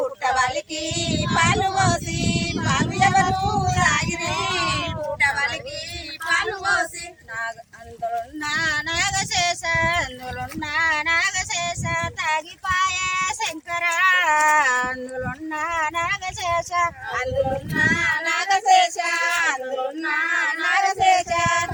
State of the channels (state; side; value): identical; both; correlation 1.00